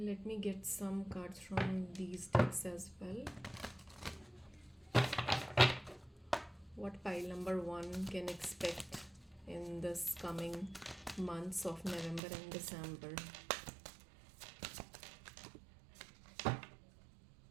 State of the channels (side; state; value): left; drops out; at 12.2 s